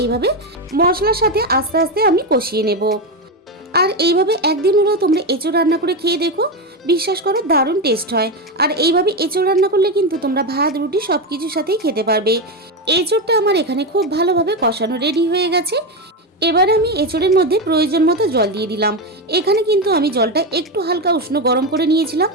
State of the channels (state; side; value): normal; both; correlation 0.12